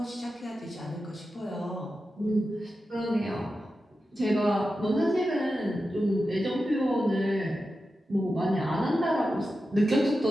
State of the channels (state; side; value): normal; both; correlation 0.91